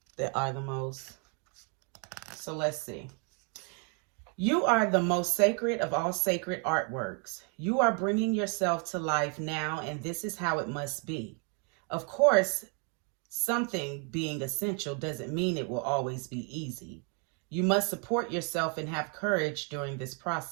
that are the most. So let's see. You are the most sacred of all sacred artworks. You are bringing yourself to life now, and this is how it must be. Of course, something being essential doesn't mean it will always be easy. You must support yourself and have courage during this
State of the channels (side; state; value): left; quieter; 37.1 dB